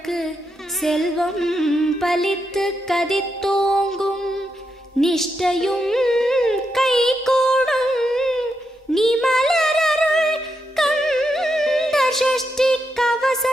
செல்வம் பலித்து கதித்தோங்கும், நிஷ்டையும் கைகூடும் நீ மலரருள் கந்த சஷ்டி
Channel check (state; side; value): normal; both; correlation 0.83